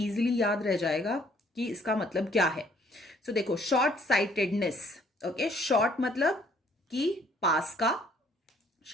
याद रह जाएगा कि इसका मतलब क्या है। सो देखो, शॉर्ट साइटेडनेस, ओके, शॉर्ट मतलब कि पास का,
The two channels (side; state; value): both; normal; correlation 0.62